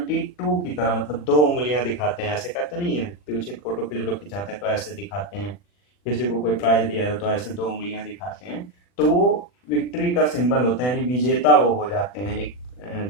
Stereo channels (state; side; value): late; right; 40 ms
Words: की तरह, मतलब 2 उंगलियां दिखाते हैं, ऐसे कहते नहीं है, पीछे फोटो पे जो लोग खिंचाते हैं तो ऐसे दिखाते हैं, किसी को कोई प्राइज दिया है तो ऐसे 2 उंगलियां दिखाते हैं। तो वो विक्ट्री का सिंबल होता है, यानी विजेता वो हो जाते हैं एक